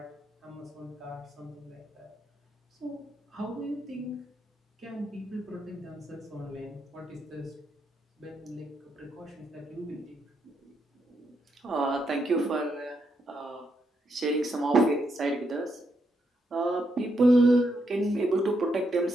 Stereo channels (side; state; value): both; normal; correlation 0.79